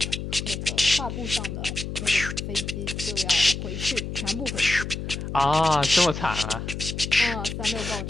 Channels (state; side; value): noise; left; hum, 6 dB below the sound